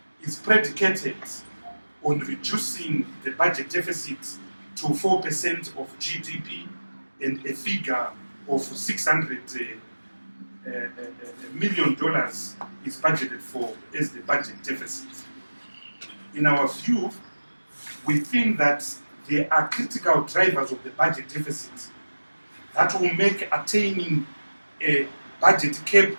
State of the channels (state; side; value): inverted; both; correlation -1.00